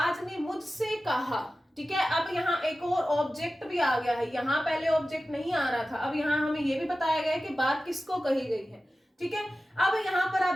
ने मुझसे कहा, ठीक है। अब यहाँ एक और ऑब्जेक्ट भी आ गया है, यहाँ पहले ऑब्जेक्ट नहीं आ रहा था, अब यहाँ हमें ये भी बताया गया है कि बात किसको कही गई है, ठीक है। अब यहाँ पर आप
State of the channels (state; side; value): normal; both; correlation 0.95